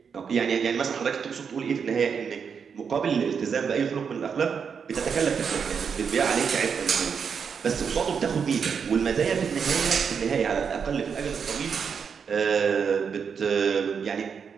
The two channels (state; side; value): quieter; left; 6.5 dB